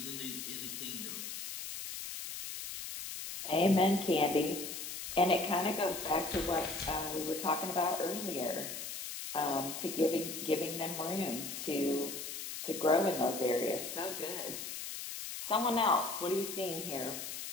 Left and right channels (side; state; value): left; noise; hiss, 7 dB below the sound